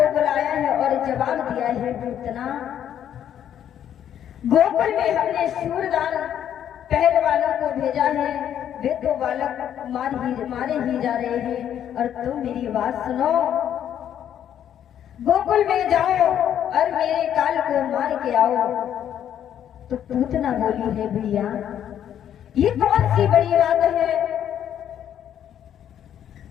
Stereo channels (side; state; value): right; quieter; 10.0 dB